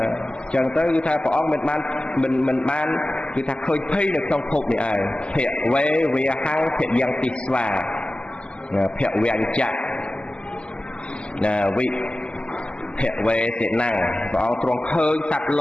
អញ្ចឹងទៅគឺថាព្រះអង្គមិនបានគឺថាឃើញភ័យនៅក្នុងភពនេះឯងភៈវេវាហੰភៈយ៉ាងទីស្វាភៈវាញ្ចៈណាវិភៈវេតិណੰព្រះអង្គទ្រង់ឃើញសត្វល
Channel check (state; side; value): late; right; 0.052 ms